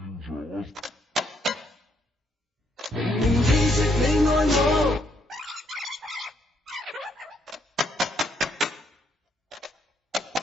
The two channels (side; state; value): both; normal; correlation 0.73